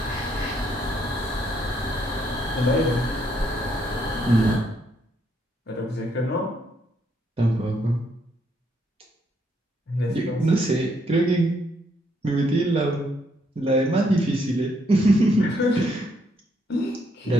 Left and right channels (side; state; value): both; normal; correlation 0.73